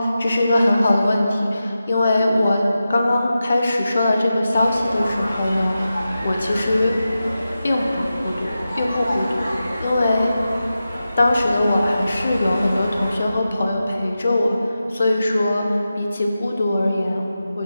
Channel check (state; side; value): inverted; both; correlation -0.92